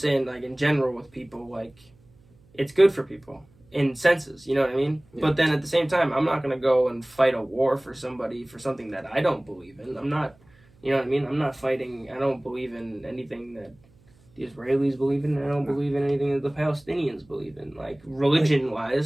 like, in general with people, like, it's good for people in senses, you know what I mean? Yeah. But then at the same time, I'm not going to go and fight a war for somebody for something that I don't believe in. I'm not, you know what I mean? I'm not fighting, I don't believe in anything that the Israelis believe in. I don't believe in anything that the Palestinians believe in. Like,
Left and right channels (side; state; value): right; noise; hum, 30 dB below the sound